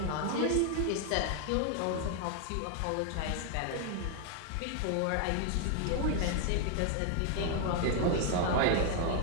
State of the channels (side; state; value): both; different; correlation 0.00